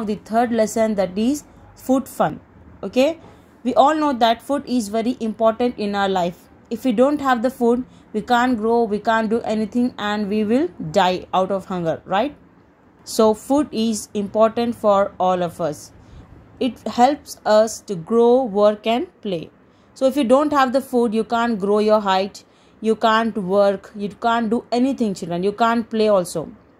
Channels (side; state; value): both; identical; correlation 1.00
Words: the third lesson, that is food fun. Okay, we all know that food is very important in our life. If we don't have the food, we can't grow, we can't do anything, and we will die out of hunger, right? So food is important for all of us. It helps us to grow, work and play. So if you don't have the food, you can't grow your height, you can't work, you can't do anything, children. You can't play also.